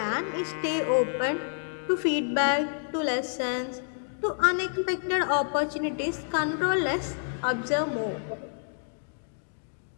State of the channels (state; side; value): silent; right; digital silence